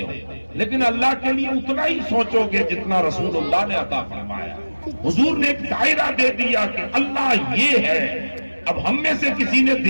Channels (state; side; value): inverted; both; correlation -1.00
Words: لیکن اللہ کے لیے اتنا ہی سوچو گے جتنا رسول اللہ نے عطا فرمایا۔ حضور نے ایک دائرہ دے دیا کہ اللہ یہ ہے۔ اب ہم میں سے کسی نے